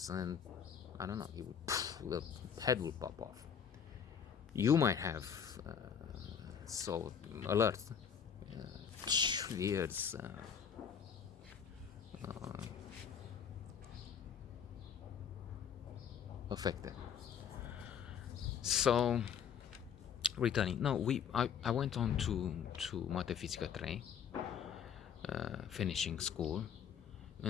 and I don't know, the head will pop off. You might have so alert, ears affected. So, returning. No, I went on to Matefizica 3, finishing school,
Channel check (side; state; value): right; quieter; 7.7 dB